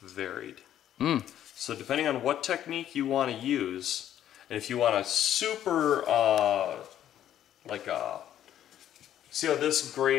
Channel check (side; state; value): right; quieter; 11.2 dB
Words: varied. So depending on what technique you want to use, and if you want a super, see how this